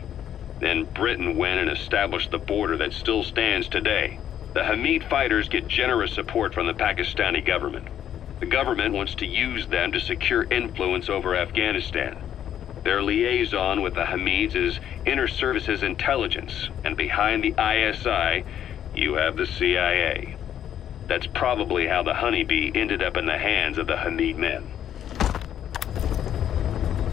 Then Britain went and established the border that still stands today. The Hamid fighters get generous support from the Pakistani government. The government wants to use them to secure influence over Afghanistan. Their liaison with the Hamids is Inter-Services Intelligence, and behind the ISI, you have the CIA. That's probably how the Honeybee ended up in the hands of the Hamid men.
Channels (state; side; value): quieter; right; 10.3 dB